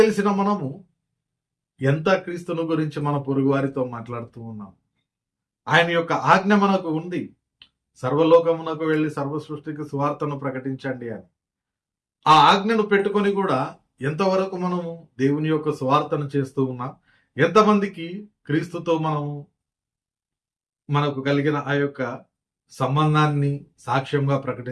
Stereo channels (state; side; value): identical; both; correlation 1.00